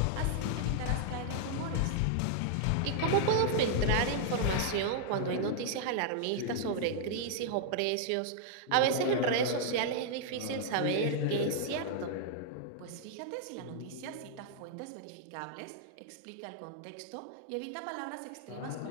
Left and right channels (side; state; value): both; different; correlation -0.01